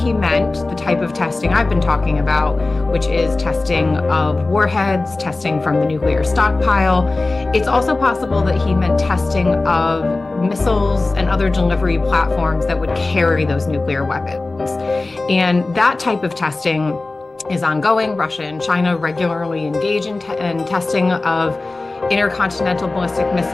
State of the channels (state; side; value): quieter; right; 3.3 dB